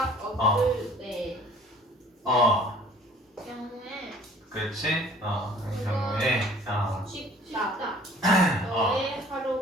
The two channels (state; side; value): normal; both; correlation 0.51